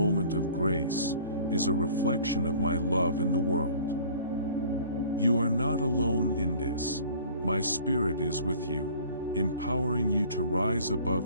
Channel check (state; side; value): inverted; both; correlation -0.49